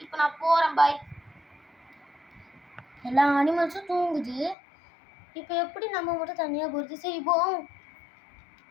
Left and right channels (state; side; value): drops out; right; at 4.5 s